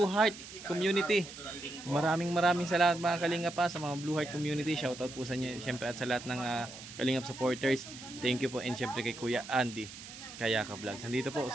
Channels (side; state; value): right; noise; hiss, 14 dB below the sound